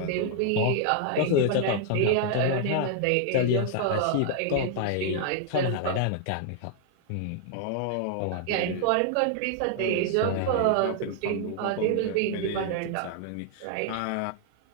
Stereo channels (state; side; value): different; both; correlation 0.00